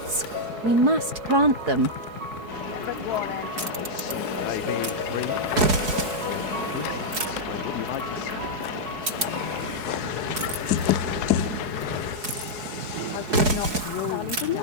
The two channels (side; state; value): left; late; 4.7 ms